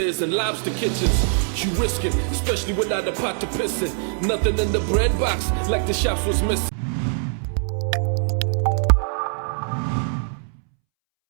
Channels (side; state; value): left; silent; 64 dB below the other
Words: and lobster kitchens. You risking, especially without a pot to piss in. Nothing in the bread box like the shops was missing.